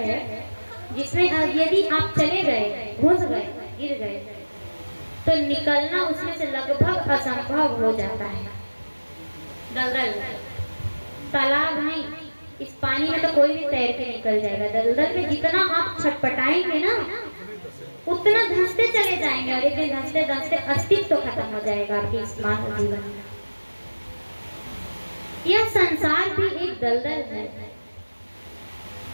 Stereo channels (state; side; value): inverted; both; correlation -1.00